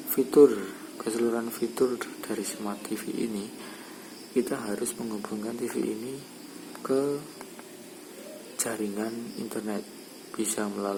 keseluruhan fitur dari Smart TV ini, kita harus menghubungkan TV ini ke jaringan internet. Bisa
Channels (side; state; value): both; identical; correlation 1.00